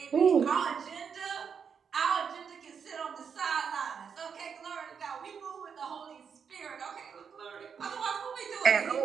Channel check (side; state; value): left; quieter; 6.7 dB